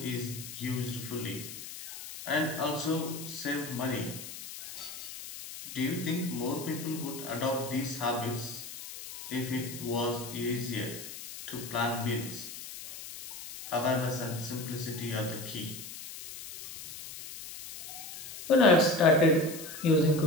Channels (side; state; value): left; noise; hiss, 11 dB below the sound